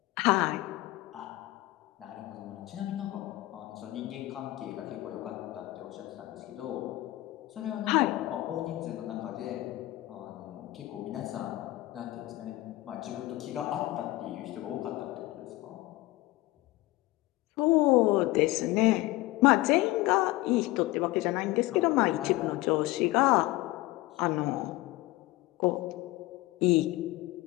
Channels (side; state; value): right; quieter; 18.5 dB